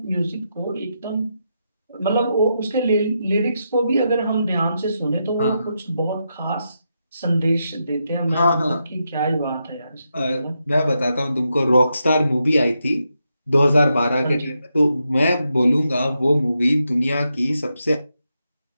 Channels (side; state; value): both; inverted; correlation -0.84